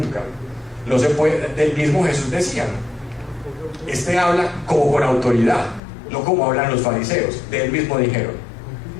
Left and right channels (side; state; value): right; drops out; at 5.8 s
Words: No se puede. Del mismo Jesús decía, ¿no? Este habla como con autoridad, no como hablan los fariseos. De él mismo dijeron.